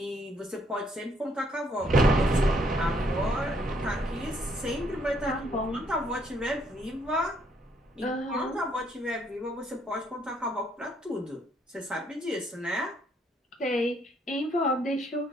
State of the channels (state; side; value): normal; both; correlation 0.69